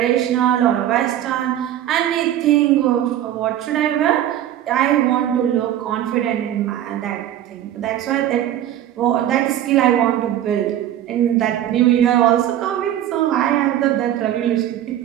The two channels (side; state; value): left; quieter; 11.8 dB